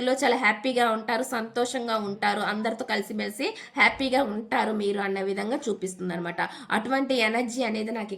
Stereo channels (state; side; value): identical; both; correlation 1.00